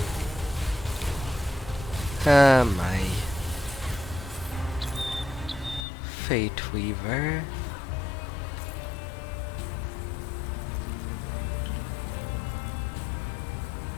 My Fate Weaver.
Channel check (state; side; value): drops out; right; at 5.9 s